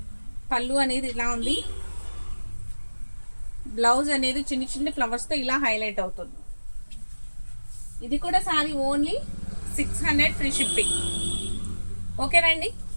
పళ్ళు అనేది ఇలా ఉంది. బ్లౌజ్ అనేది చిన్న చిన్న ఫ్లవర్స్తో ఇలా హైలైట్ అవుతుంది. ఇది కూడా సారీ ఓన్లీ 600 ఫ్రీ షిప్పింగ్. ఓకేనండి.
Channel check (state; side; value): inverted; both; correlation -1.00